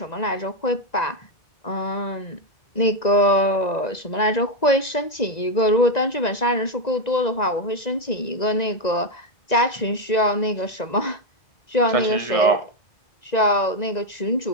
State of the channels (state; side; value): late; right; 1.9 ms